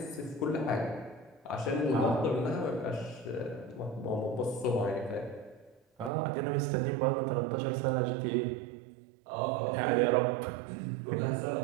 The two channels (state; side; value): drops out; left; at 6.1 s